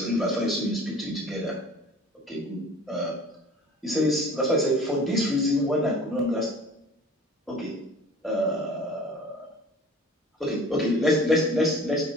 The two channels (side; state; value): both; normal; correlation 0.45